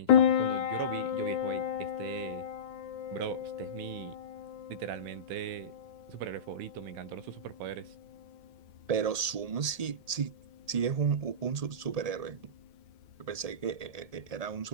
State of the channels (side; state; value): left; late; 1.8 ms